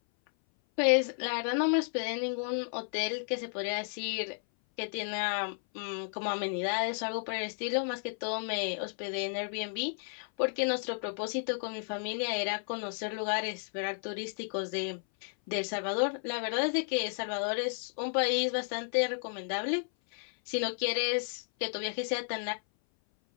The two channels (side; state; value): right; silent; 56 dB below the other